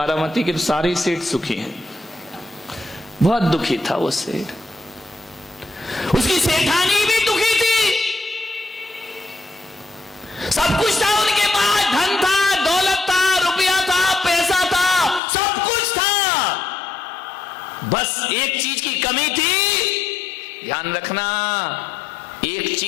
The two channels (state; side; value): drops out; right; at 15.2 s